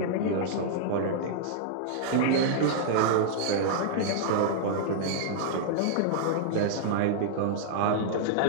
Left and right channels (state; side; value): different; both; correlation -0.01